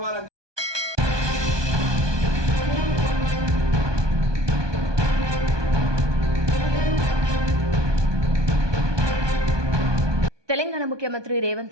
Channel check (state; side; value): late; left; 1.2 ms